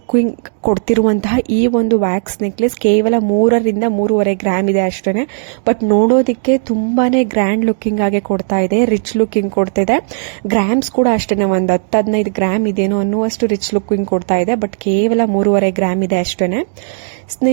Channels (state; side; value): silent; left; 70 dB below the other